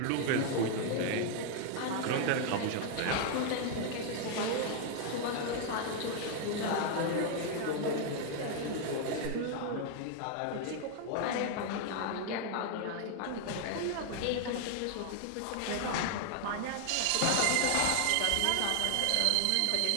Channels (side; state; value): both; different; correlation 0.00